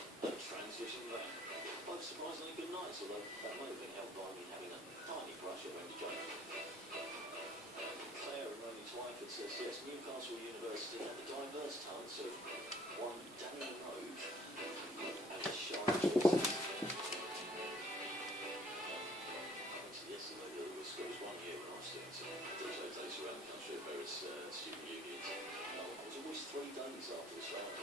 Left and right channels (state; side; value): normal; both; correlation 0.57